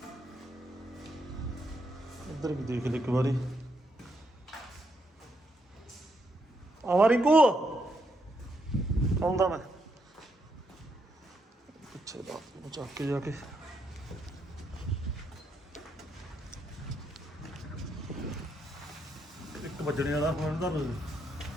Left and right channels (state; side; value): normal; both; correlation 0.78